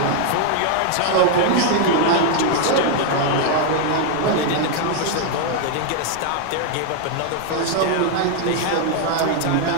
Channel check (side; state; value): both; different; correlation 0.00